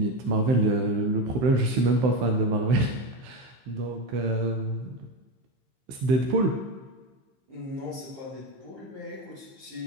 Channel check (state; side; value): late; left; 15 ms